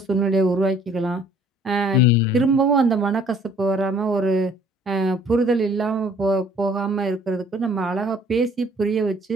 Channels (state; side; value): normal; both; correlation 0.57